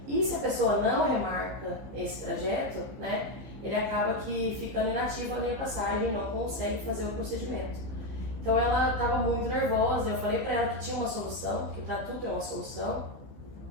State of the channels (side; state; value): left; late; 15 ms